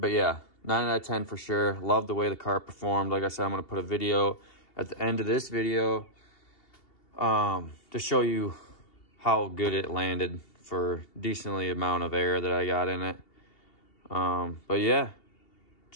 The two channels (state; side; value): late; right; 2.8 ms